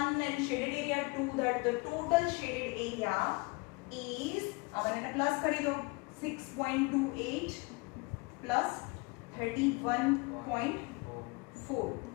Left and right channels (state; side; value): quieter; right; 27.9 dB